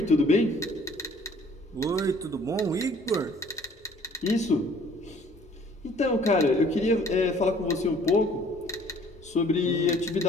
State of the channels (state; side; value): normal; both; correlation 0.55